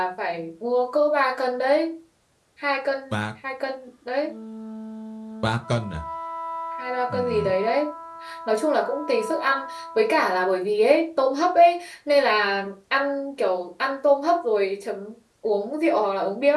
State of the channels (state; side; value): identical; both; correlation 1.00